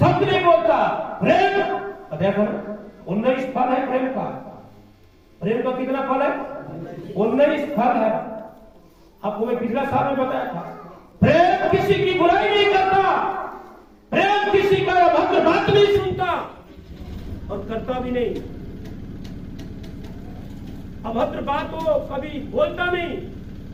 नहीं बोलता, प्रेम देखो 19 फल है प्रेम का। प्रेम का कितना फल है? 19 फल है। आपको मैं पिछला साल में बताया था, प्रेम किसी की बुराई नहीं करता, प्रेम किसी का अभद्र बात नहीं सुनता और करता भी नहीं। अभद्र बात वो कभी बोलता नहीं।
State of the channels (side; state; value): both; identical; correlation 1.00